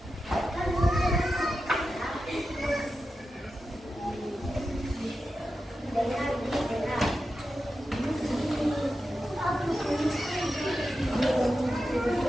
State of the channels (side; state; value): both; normal; correlation 0.91